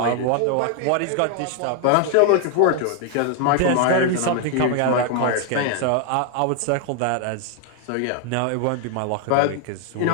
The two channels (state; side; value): different; both; correlation 0.00